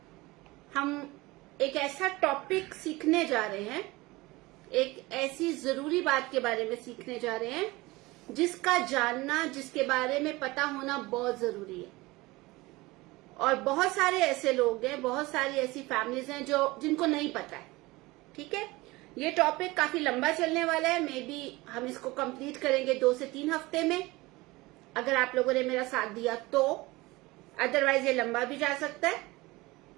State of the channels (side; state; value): left; quieter; 21.3 dB